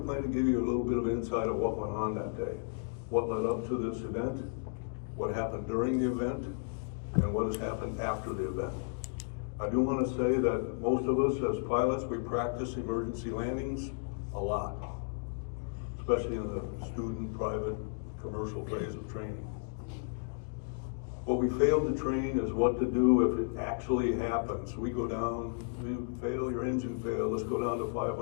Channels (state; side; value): silent; right; digital silence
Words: plan to give you a little bit of insight of what went on that day, what led up to this event, what happened during the event, and what has happened after the event. I do want to say that most of us as pilots, we practice emergency landings, a lot, especially in the student, private, commercial phase of training. What we failed to train is what to do if it actually happens. We go down, you fail, your engine failed, let's go down to